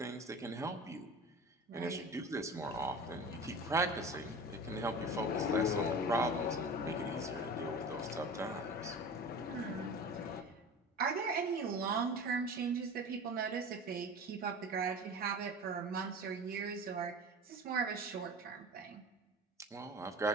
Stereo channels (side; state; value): both; normal; correlation 0.34